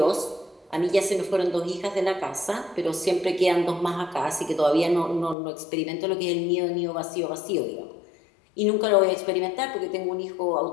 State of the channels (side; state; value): right; drops out; at 5.4 s